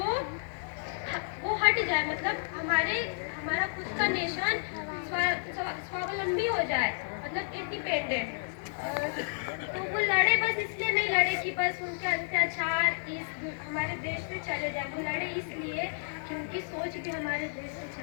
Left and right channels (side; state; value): right; silent; digital silence